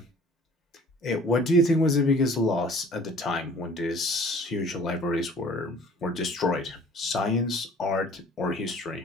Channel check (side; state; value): both; normal; correlation 0.51